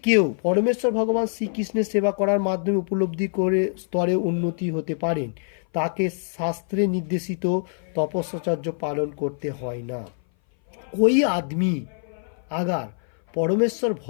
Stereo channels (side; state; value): right; silent; 58 dB below the other